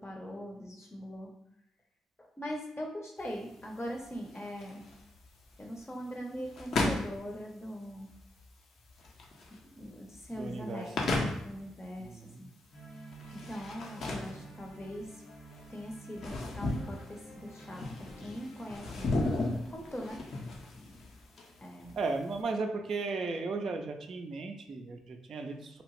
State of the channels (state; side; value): normal; both; correlation 0.81